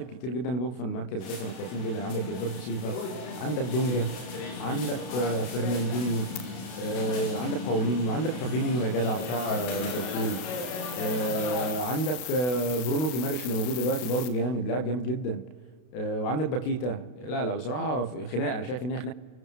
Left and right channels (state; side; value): late; right; 32 ms